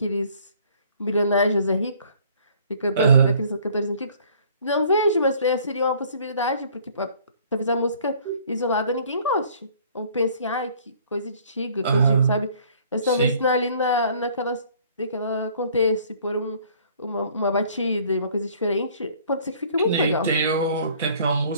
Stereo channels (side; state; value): both; inverted; correlation -0.56